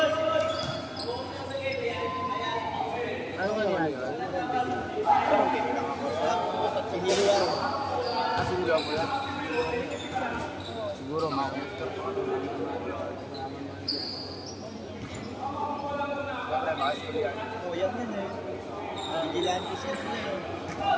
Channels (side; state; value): both; identical; correlation 1.00